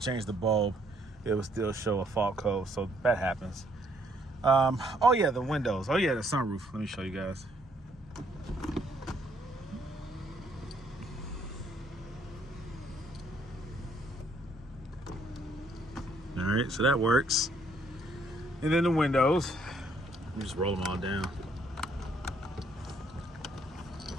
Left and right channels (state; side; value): normal; both; correlation 0.68